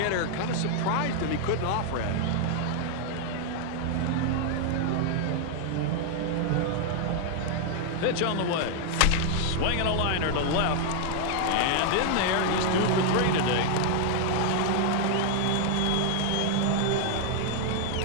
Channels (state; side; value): different; both; correlation 0.00